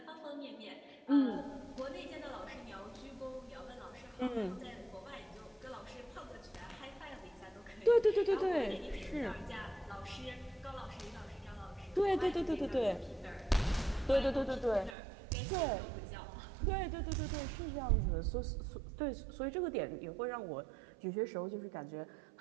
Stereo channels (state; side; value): drops out; left; at 15.0 s